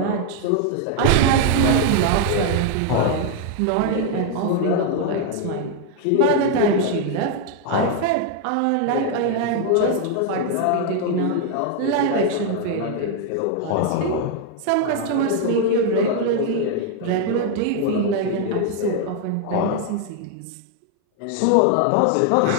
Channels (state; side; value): different; both; correlation 0.00